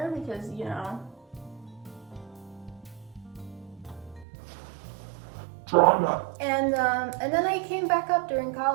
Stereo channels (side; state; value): left; drops out; at 4.2 s